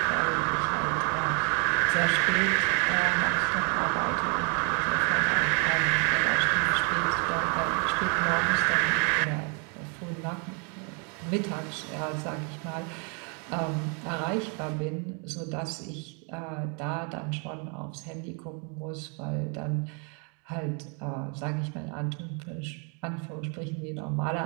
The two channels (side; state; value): left; quieter; 36.8 dB